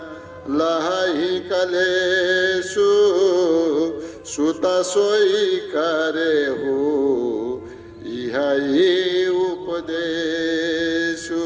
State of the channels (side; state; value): both; identical; correlation 1.00